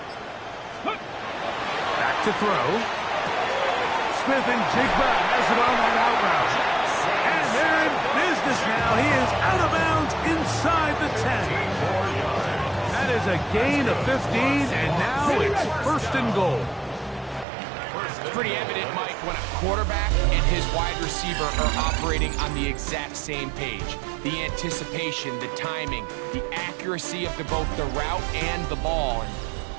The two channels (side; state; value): left; drops out; at 17.4 s